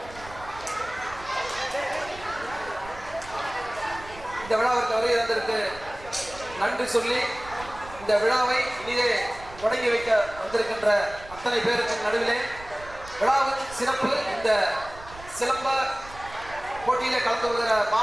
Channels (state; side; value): noise; right; rumble, 18 dB below the sound